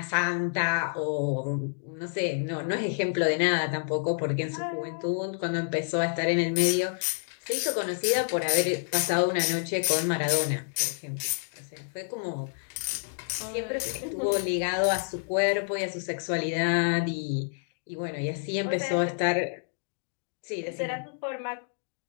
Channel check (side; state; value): right; silent; digital silence